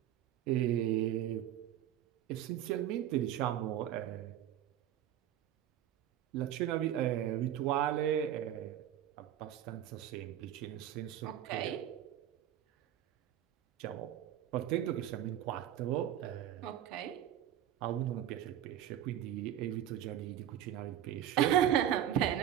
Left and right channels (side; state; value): left; quieter; 11.3 dB